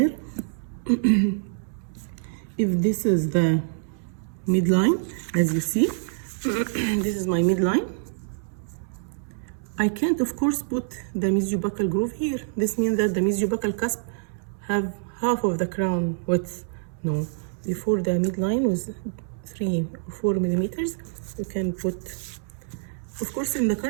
if this is the midline, as you see, this is my midline. I can't, of course, put the mesiobuccal groove here. This means that the mesiobuccal cusp have half of the crown width. No, before the midline was 3 or 4 millimeters, you can put, of course, in the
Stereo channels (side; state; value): left; silent; digital silence